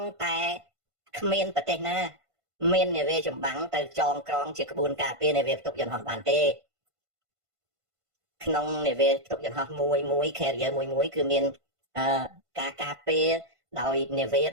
តែគ្មានប្រទេសណាមាននាវាចម្បាំងទៅចងក្រងជាក្បួនការពារនាវាផ្ទុកយន្តហោះបានទេក្នុងនាវាផ្ទុកយន្តហោះមួយ carrier មួយគឺមានការការពារដោយនាវាដ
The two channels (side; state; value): left; late; 1.5 ms